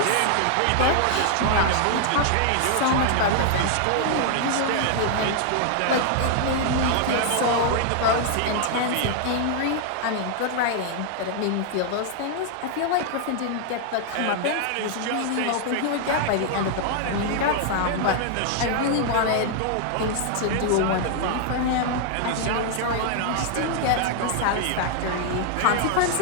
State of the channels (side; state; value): both; different; correlation 0.00